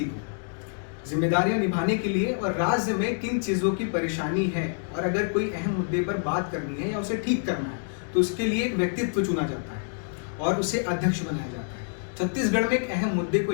जिम्मेदारियां निभाने के लिए, और राज्य में किन चीजों की परेशानी है, और अगर कोई अहम मुद्दे पर बात करनी है या उसे ठीक करना है तो उसके लिए एक व्यक्तित्व चुना जाता है और उसे अध्यक्ष बनाया जाता है। छत्तीसगढ़ में एक अहम मुद्दे को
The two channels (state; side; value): silent; right; digital silence